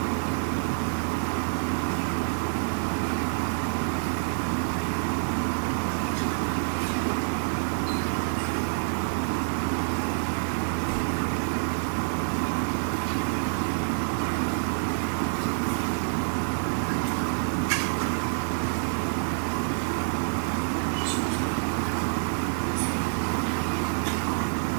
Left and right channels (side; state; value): left; silent; 60 dB below the other